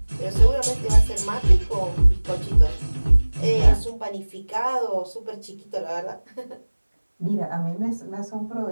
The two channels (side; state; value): both; inverted; correlation -1.00